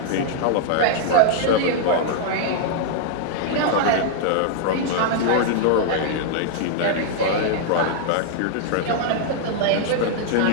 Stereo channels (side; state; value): both; different; correlation -0.01